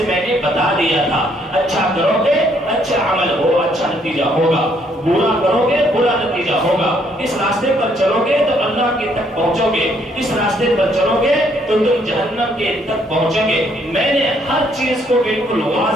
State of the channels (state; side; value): normal; both; correlation 0.68